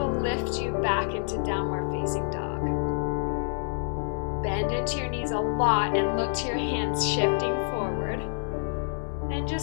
lift you back into downward facing dog. Bend into your knees a lot and look to your hands shifting forward. And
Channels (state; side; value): silent; right; 59 dB below the other